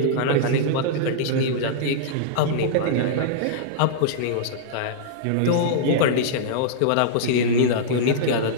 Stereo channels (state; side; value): different; both; correlation -0.02